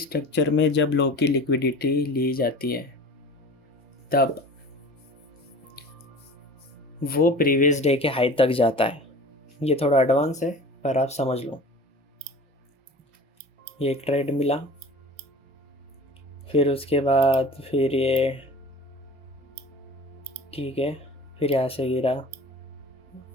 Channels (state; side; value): normal; both; correlation 0.39